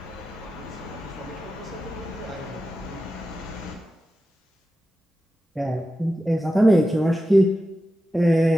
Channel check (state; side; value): normal; both; correlation 0.92